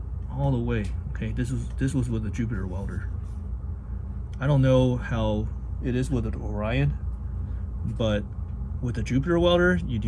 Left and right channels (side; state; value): both; identical; correlation 1.00